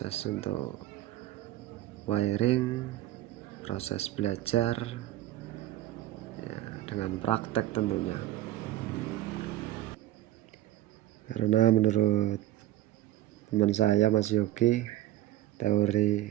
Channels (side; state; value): left; quieter; 14.5 dB